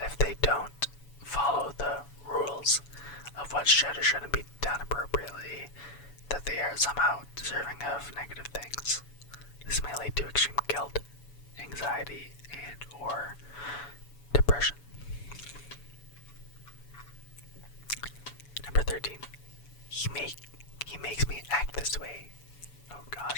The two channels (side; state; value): right; late; 7.0 ms